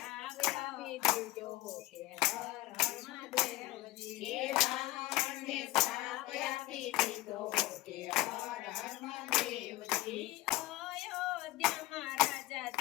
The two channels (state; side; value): quieter; right; 17.6 dB